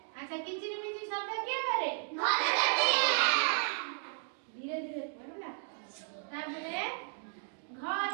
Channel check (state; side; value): silent; left; 55 dB below the other